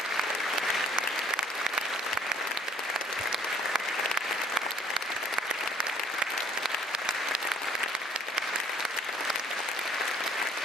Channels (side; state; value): both; normal; correlation 0.60